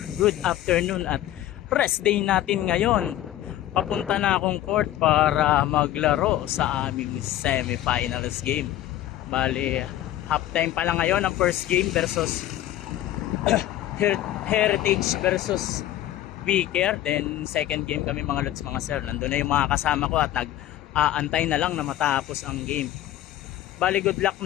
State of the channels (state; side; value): quieter; right; 13.4 dB